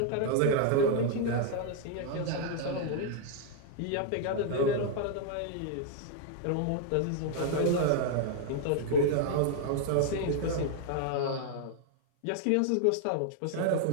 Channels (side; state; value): both; different; correlation 0.00